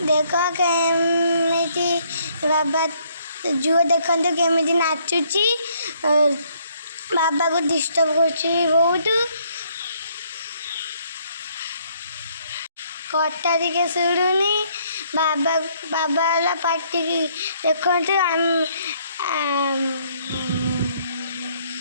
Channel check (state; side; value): inverted; both; correlation -0.67